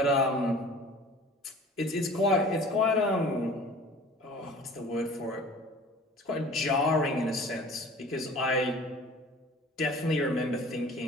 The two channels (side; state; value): both; normal; correlation 0.45